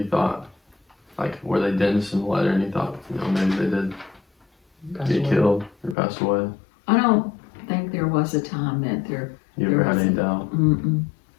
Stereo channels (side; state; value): right; drops out; at 6.0 s